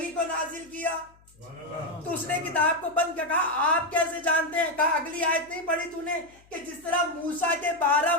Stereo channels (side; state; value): left; noise; hum, 29 dB below the sound